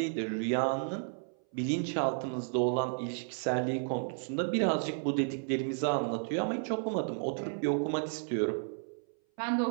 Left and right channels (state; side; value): silent; left; 56 dB below the other